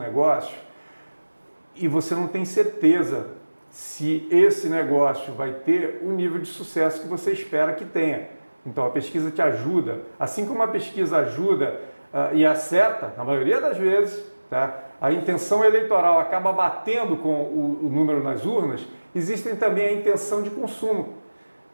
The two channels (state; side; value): inverted; both; correlation -1.00